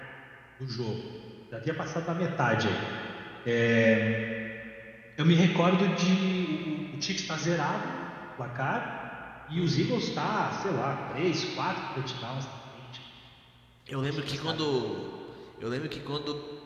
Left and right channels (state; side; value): identical; both; correlation 1.00